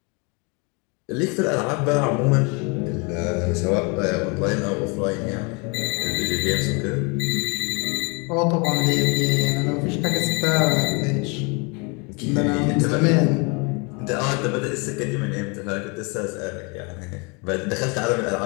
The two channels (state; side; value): quieter; right; 31.1 dB